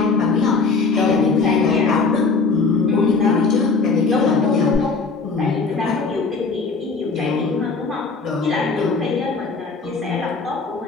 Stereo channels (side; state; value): right; quieter; 4.4 dB